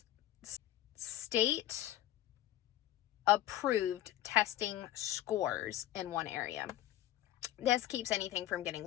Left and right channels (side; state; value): right; quieter; 13.5 dB